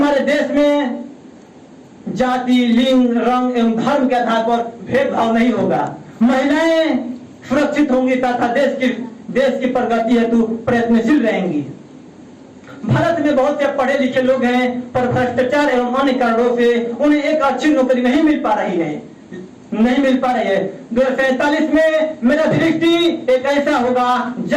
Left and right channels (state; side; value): identical; both; correlation 1.00